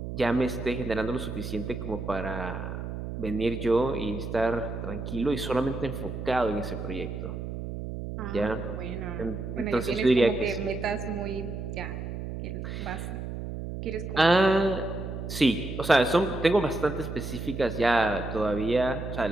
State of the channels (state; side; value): noise; right; hum, 6 dB below the sound